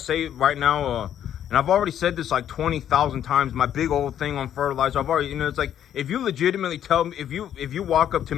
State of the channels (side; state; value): right; quieter; 10.2 dB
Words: it right now, and I've already said this like 20,000 times, my big old thing on fertilizer, I've already, it's like, if you legitimately tell me, if you walk up to